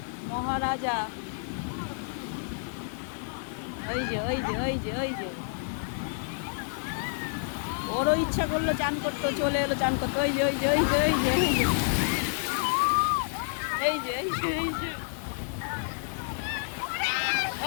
মহারাজা। ওই যে ওরও ইচ্ছা করলো চান করতে, চলে এলো চান করতে। এই যে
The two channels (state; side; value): silent; right; digital silence